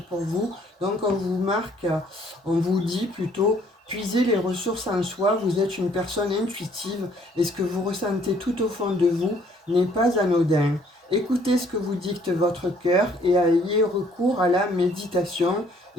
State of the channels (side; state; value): both; normal; correlation 0.62